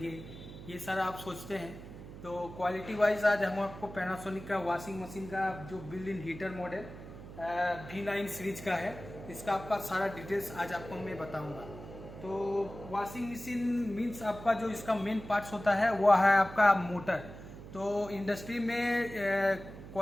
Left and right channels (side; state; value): right; noise; hum, 14 dB below the sound